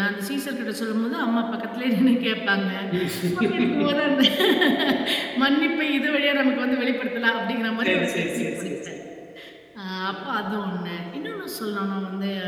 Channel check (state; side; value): identical; both; correlation 1.00